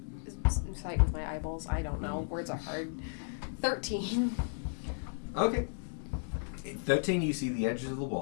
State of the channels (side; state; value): right; silent; digital silence